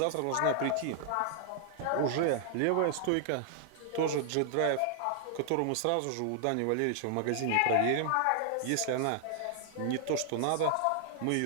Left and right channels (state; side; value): different; both; correlation 0.00